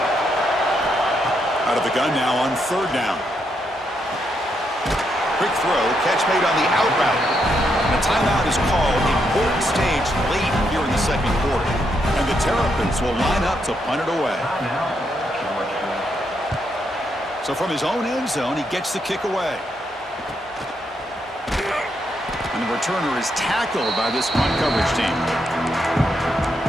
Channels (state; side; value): normal; both; correlation 0.79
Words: Out of the gun now on 3rd down. Quick throw, catch made on the out route. And a timeout is called. Important stage late here in the 2nd quarter. And the Terrapins will line up to punt it away. So from his own end zone, he gets the kick away. And the returner is tackled by this punt coverage team.